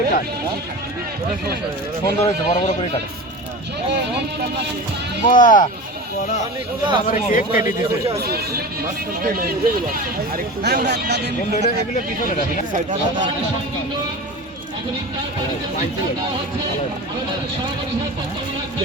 সুন্দর হয়েছে, বড় বড় করে কাটে। বাহ, কেক কেটে দিতে এগুলো পিছনে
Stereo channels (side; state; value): both; normal; correlation 0.31